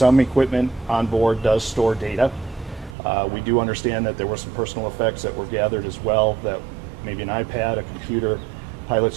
equipment on board does store data. We do understand that there were some personal effects that were gathered as well, that maybe an iPad, a computer.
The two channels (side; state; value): left; drops out; at 3.0 s